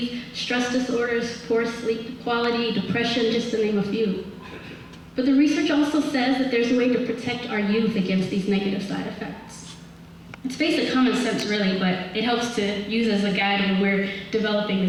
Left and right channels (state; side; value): identical; both; correlation 1.00